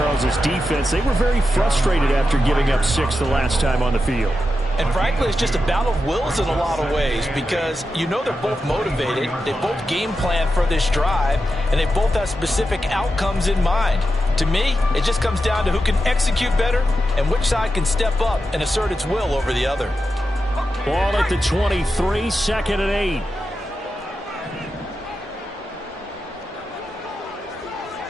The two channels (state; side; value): normal; both; correlation 0.89